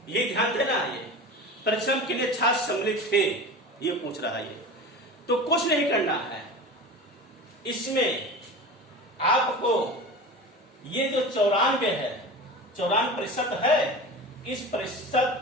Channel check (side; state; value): both; normal; correlation 0.32